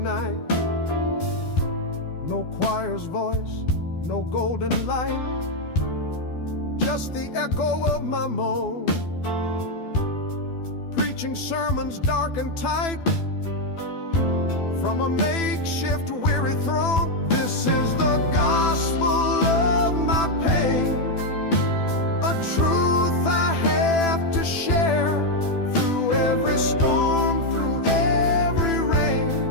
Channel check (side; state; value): right; late; 12 ms